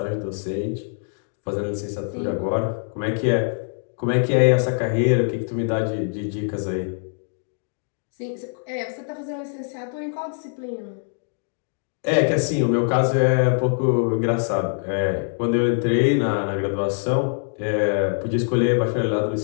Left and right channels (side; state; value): right; silent; 63 dB below the other